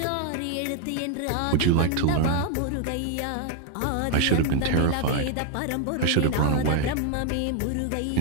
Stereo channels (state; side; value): different; both; correlation 0.00